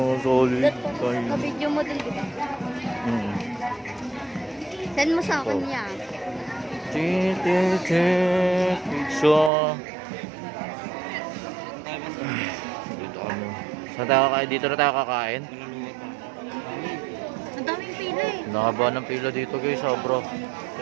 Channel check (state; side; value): drops out; left; at 9.5 s